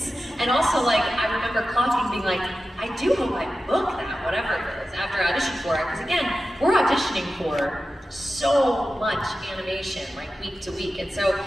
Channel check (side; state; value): both; normal; correlation 0.93